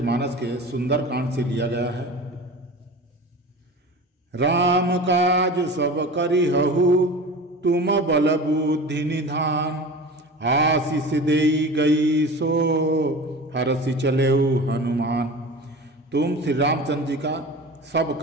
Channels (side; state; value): both; normal; correlation 0.35